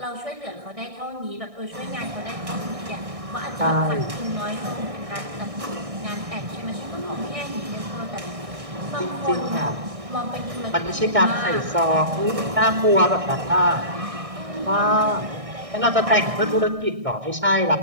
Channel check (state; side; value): late; left; 1.6 ms